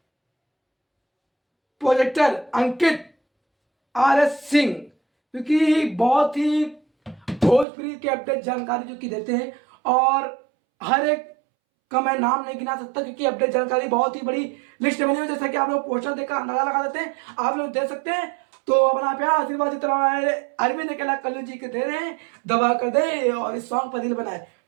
प्रोजेक्टर अंकित RS सिंह, क्योंकि बहुत ही भोजपुरी के अपडेट जानकारी जो कि देते हैं और हर एक का मैं नाम नहीं गिना सकता क्योंकि अपडेट जानकारी बहुत ही बड़ी लिस्ट बनी हुई है। जैसा कि आप लोग पोस्टर देखकर अंदाजा लगा देते हैं, आप लोग दे सकते हैं। तो अपना प्यार आशीर्वाद जितना हमारे अरविंद अकेला कल्लू जी के दे रहे हैं, दबा कर दे और इस सॉन्ग पर दिल बनाए।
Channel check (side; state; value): left; drops out; at 7.7 s